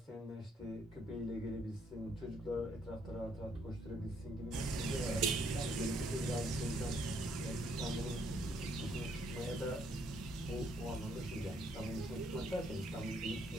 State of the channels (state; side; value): normal; both; correlation 0.69